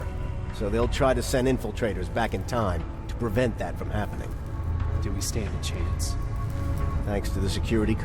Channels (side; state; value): both; identical; correlation 1.00